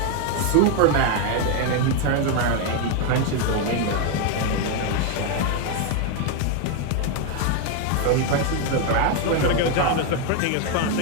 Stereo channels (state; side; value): different; both; correlation 0.01